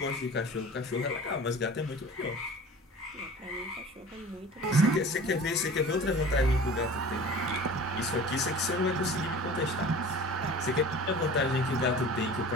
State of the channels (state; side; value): normal; both; correlation 0.41